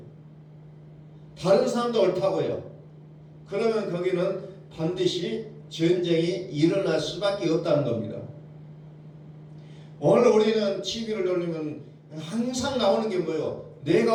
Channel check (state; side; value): identical; both; correlation 1.00